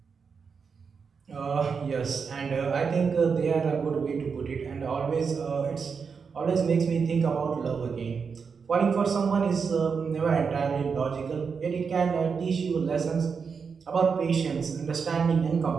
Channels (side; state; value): left; quieter; 5.7 dB